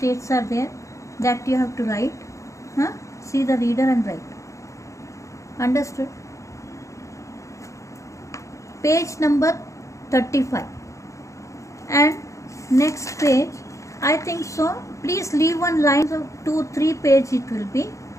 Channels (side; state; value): right; late; 0.15 ms